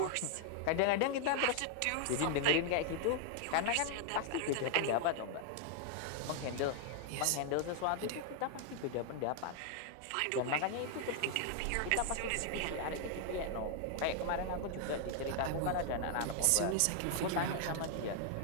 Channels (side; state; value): both; different; correlation 0.00